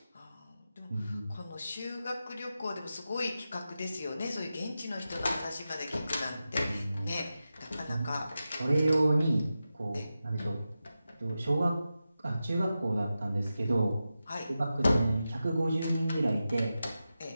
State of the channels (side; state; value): both; inverted; correlation -0.92